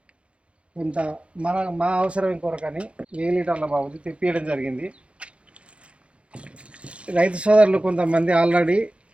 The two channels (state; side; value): late; left; 0.060 ms